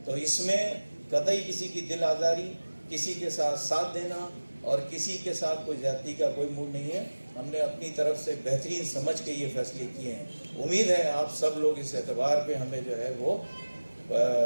तो इसमें कतई किसी की दिल आज़ारी, किसी के साथ देना और किसी के साथ कोई ज़्यादती का कोई मूड नहीं है। हमने अपनी तरफ से बेहतरीन समझ के ये फैसले किए हैं। उम्मीद है आप सब लोग इस एतबार पे हमें जो है वो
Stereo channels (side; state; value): both; inverted; correlation -1.00